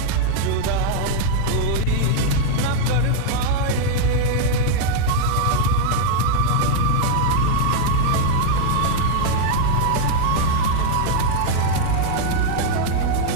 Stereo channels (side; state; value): both; different; correlation 0.00